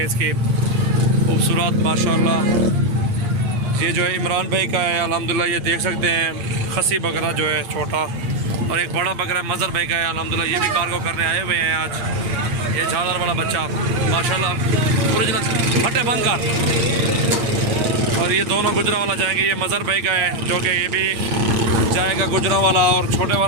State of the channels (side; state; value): left; late; 8.6 ms